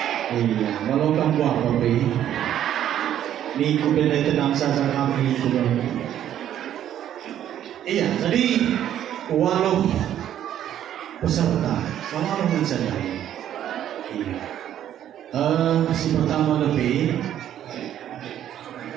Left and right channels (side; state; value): left; quieter; 10.9 dB